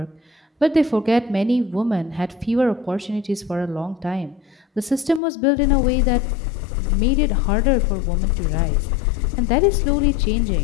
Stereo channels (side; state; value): right; drops out; at 5.2 s